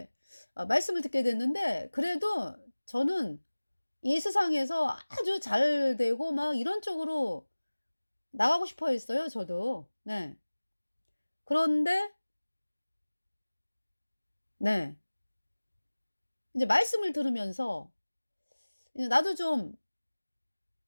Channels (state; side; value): inverted; both; correlation -1.00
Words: 말씀을 듣게 됐는데 그래도 저는 이 세상에서 아주 잘 되고 막 이런 쪽으로 나가고 싶어 했어요 저도. 네. 그런데 네. 인제 말씀을 들으면서 이제 나도 좀